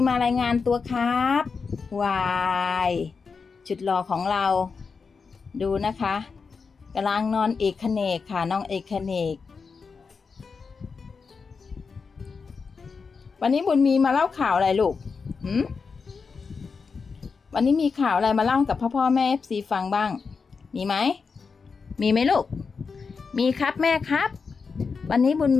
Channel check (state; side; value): quieter; right; 5.1 dB